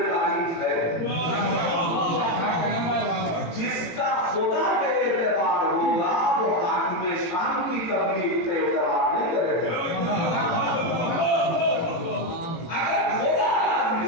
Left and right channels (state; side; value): late; right; 18 ms